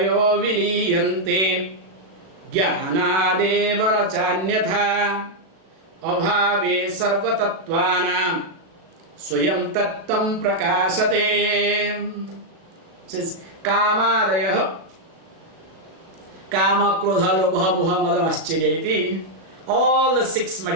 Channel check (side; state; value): left; late; 37 ms